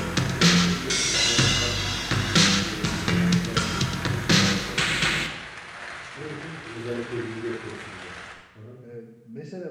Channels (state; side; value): identical; both; correlation 1.00